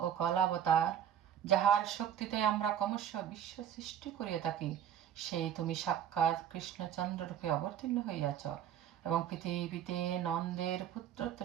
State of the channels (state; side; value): quieter; left; 9.7 dB